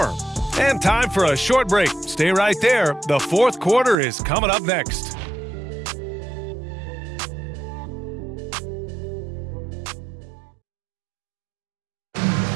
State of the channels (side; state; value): left; drops out; at 4.0 s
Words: And time for a short break. Stay right there. The 4th quarter is coming up next.